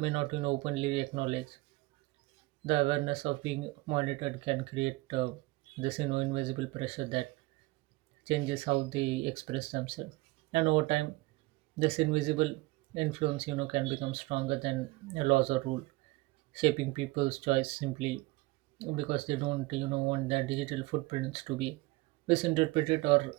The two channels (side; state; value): left; quieter; 21.7 dB